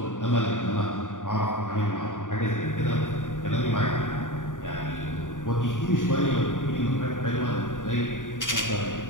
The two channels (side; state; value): right; late; 0.88 ms